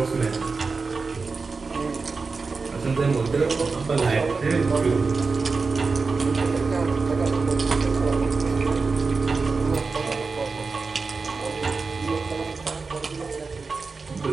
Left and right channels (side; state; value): left; quieter; 4.4 dB